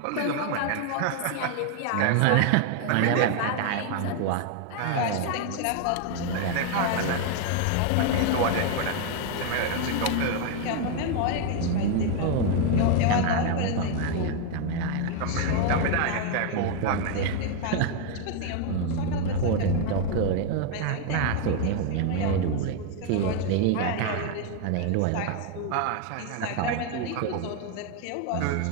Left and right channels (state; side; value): different; both; correlation 0.01